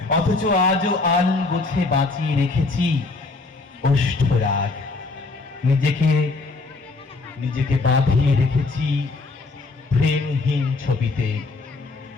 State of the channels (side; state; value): right; quieter; 3.6 dB